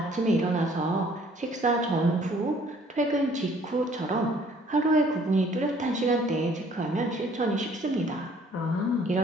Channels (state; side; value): normal; both; correlation 0.58